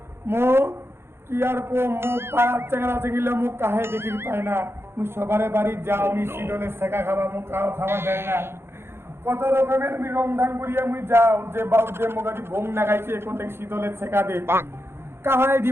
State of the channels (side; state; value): left; late; 0.12 ms